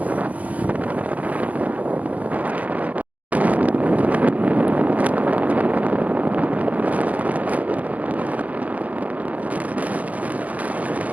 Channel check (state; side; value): late; left; 0.072 ms